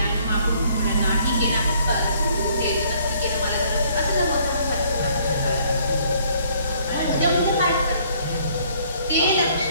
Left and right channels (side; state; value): both; inverted; correlation -0.62